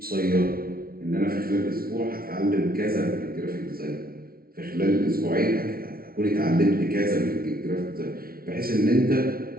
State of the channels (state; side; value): late; left; 0.43 ms